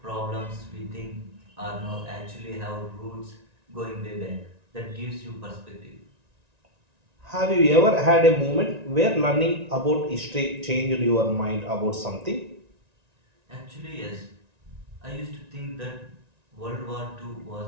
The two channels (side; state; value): left; late; 1.9 ms